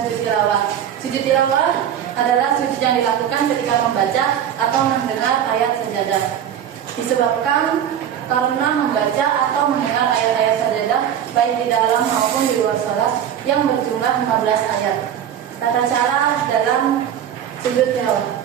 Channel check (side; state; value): left; quieter; 9.6 dB